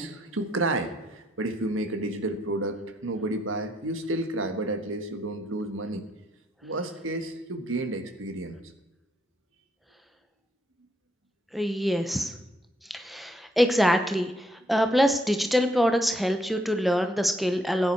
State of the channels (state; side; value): normal; both; correlation 0.72